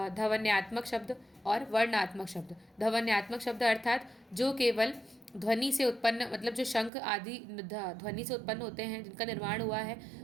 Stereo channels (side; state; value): left; drops out; at 6.9 s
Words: शब्द और वर्णात्मक शब्द। ध्वन्यात्मक शब्द अर्थात जो केवल ध्वनि से उत्पन्न, मतलब जो शंख आदि ध्वनि से उत्पन्न होते हैं, जिनका निर्माण हुआ है,